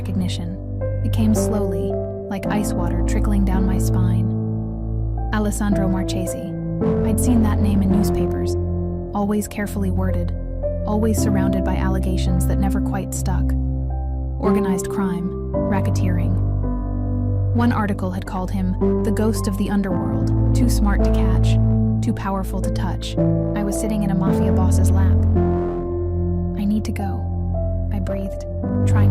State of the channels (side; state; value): both; identical; correlation 1.00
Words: It came slowly, like ice water trickling down my spine. Alessandro Marchesi. I'd seen that name in newspapers, always carefully worded, always surrounded by allegations that never quite stuck. Organized crime, racketeering. One article had called him the ghost of the underworld, too smart to catch, too powerful to touch. I was sitting in a Mafia boss's lap. "I need to go," I breathed,